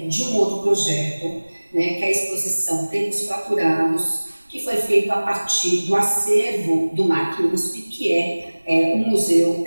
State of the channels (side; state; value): both; inverted; correlation -1.00